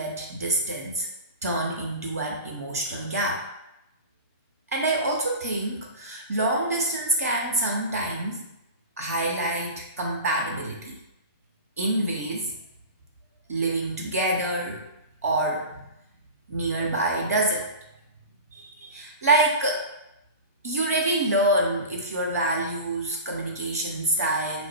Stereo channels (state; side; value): inverted; both; correlation -0.32